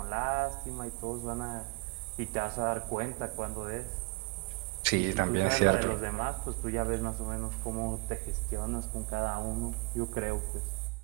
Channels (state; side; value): quieter; left; 27.4 dB